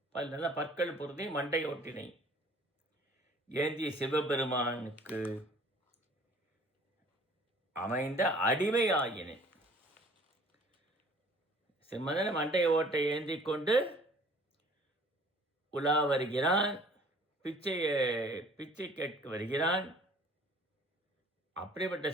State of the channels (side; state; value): both; normal; correlation 0.52